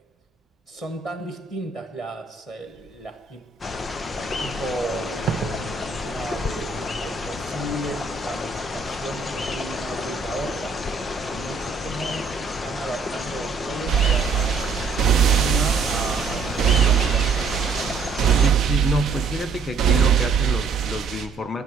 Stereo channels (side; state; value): left; quieter; 4.4 dB